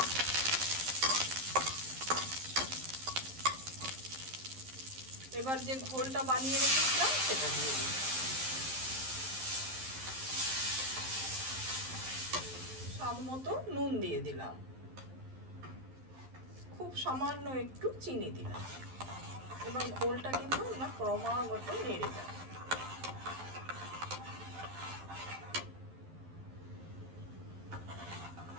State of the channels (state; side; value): late; left; 11 ms